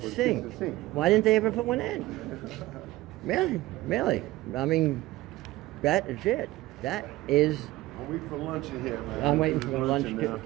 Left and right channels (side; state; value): left; quieter; 17.9 dB